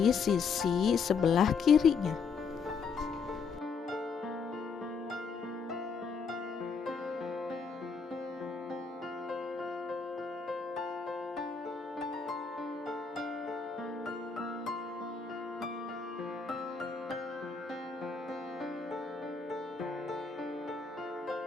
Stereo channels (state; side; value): quieter; right; 5.4 dB